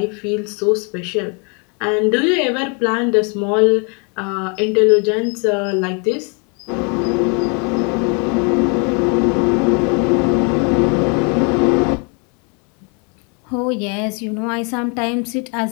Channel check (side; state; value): right; quieter; 35.2 dB